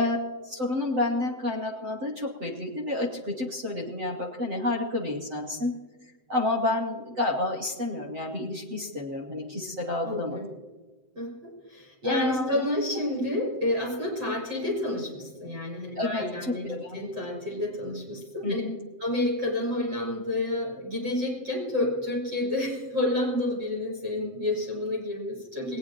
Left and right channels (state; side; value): late; left; 7.8 ms